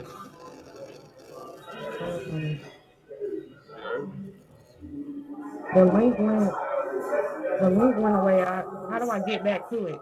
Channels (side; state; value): both; identical; correlation 1.00